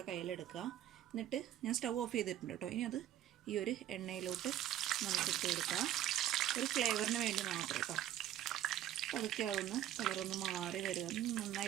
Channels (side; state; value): left; quieter; 12.0 dB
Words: കയ്യിലെടുക്കുക. എന്നിട്ട് ഞാൻ സ്റ്റൗ ഓഫ് ചെയ്തിട്ടുണ്ട് കേട്ടോ. ഇനി അത് ഈ ഒരു എണ്ണയിലോട്ട് നമുക്ക് ഇട്ട് കൊടുക്കാം. ഒരു ഫ്ലേവറിന് വേണ്ടി മാത്രം കേട്ടോ. അപ്പോൾ അതൊക്കെ ആവുന്ന കളറൊന്ന് മാറി വരിക,